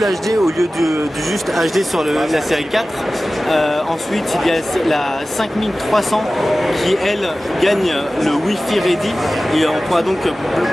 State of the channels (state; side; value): normal; both; correlation 0.96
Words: HD au lieu du juste HD sur la série 4. Ensuite il y a la 5300 qui elle gagne le Wi-Fi Ready et on pourra donc